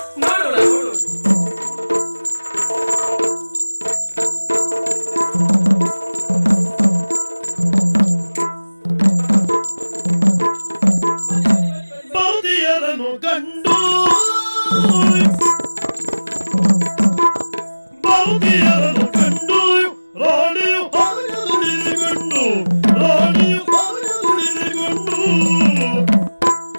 ನೋಡೋಣ ನೋಡೋಣ. ಬಾದಿಯರನ್ನು ಕಂಡು ಬಾದಿಯರನ್ನು ಕಂಡು ರಾಣಿಯು ಹಾಗೆ ದುಡಿದುಕೊಂಡು ರಾಣಿಯು ಹಾಗೆ ದುಡಿದುಕೊಂಡು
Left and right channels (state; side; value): inverted; both; correlation -1.00